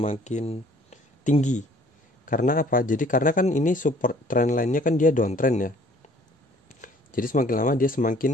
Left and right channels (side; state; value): both; normal; correlation 0.56